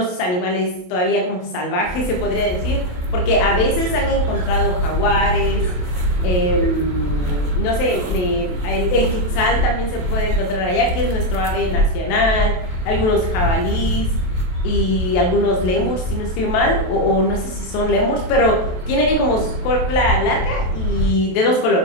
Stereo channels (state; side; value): late; right; 28 ms